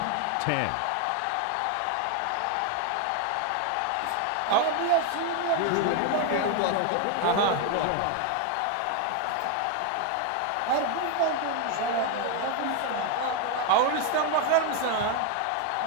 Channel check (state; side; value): different; both; correlation 0.01